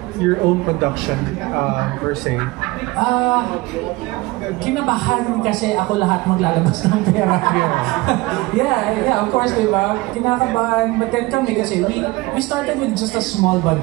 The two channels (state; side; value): quieter; left; 21.6 dB